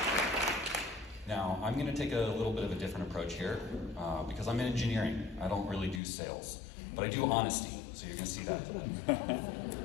Now, I'm going to take a little bit of a different approach here because I'm in engineering. I don't really do sales, but I do honesty, so you're going to see that today.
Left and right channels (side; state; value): right; drops out; at 6.0 s